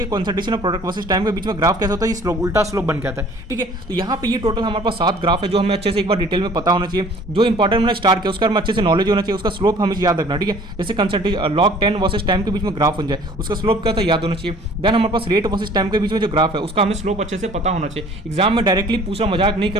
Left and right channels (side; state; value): both; normal; correlation 0.51